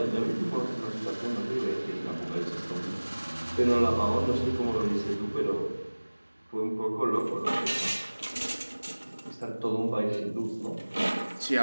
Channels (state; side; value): inverted; both; correlation -1.00